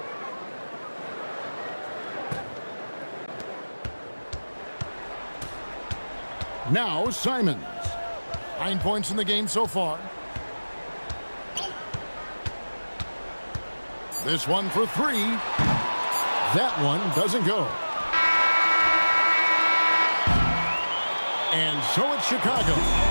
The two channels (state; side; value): inverted; both; correlation -1.00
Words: Now Simons. 9 points in the game so far. This one for 3. That one doesn't go. And so it's Chicago.